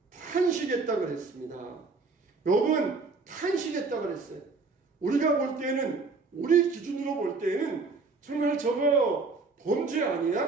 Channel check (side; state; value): left; quieter; 4.1 dB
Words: 탄식했다 그랬습니다. 욥은 탄식했다 그랬어요. 우리가 볼 때는, 우리 기준으로 볼 때는 정말 저거 범죄